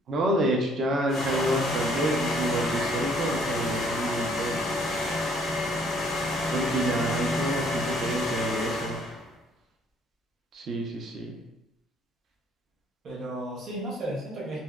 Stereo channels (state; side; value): normal; both; correlation 0.62